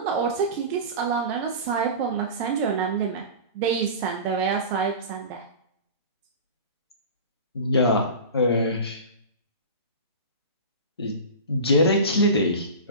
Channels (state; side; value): inverted; both; correlation -0.31